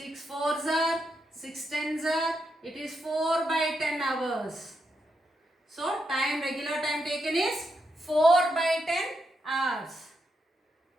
4s are, 6 10s are, it is 4 by 10 hours. So time, regular time taken is 4 by 10 hours.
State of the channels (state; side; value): normal; both; correlation 0.83